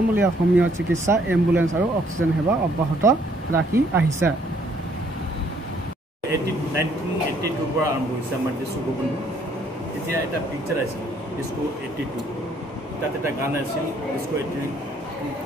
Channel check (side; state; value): both; normal; correlation 0.65